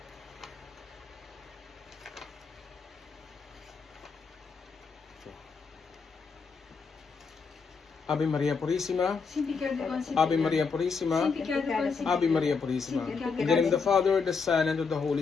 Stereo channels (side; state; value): right; quieter; 5.2 dB